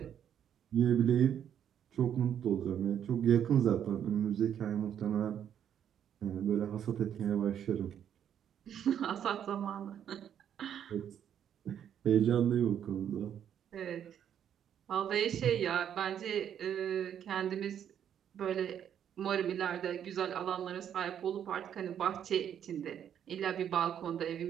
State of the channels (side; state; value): left; quieter; 9.3 dB